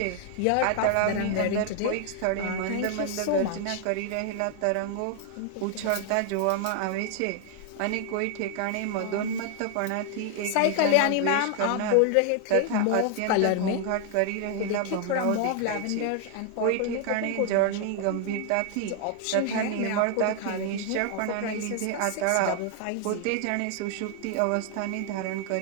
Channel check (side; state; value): both; different; correlation 0.00